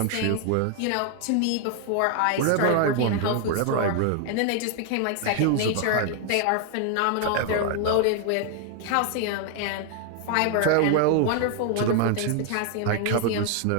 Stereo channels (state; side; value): different; both; correlation 0.00